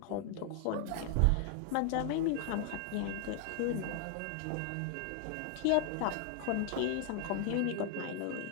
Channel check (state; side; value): different; both; correlation 0.00